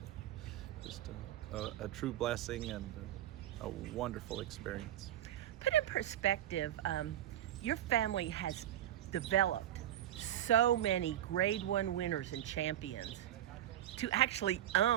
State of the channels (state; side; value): quieter; left; 12.1 dB